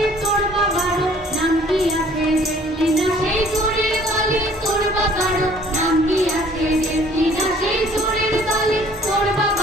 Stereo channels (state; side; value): normal; both; correlation 0.55